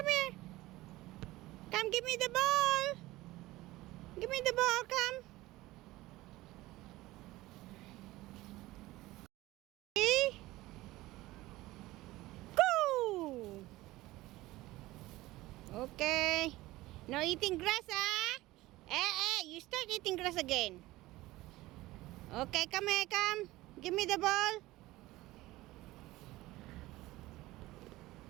here. Come, give me the ball. Give me the ball, come. Okay. Go. Okay. No eating grass, ah? You start eating grass again. Okay, come here, come. Give me the ball.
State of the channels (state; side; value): quieter; left; 18.2 dB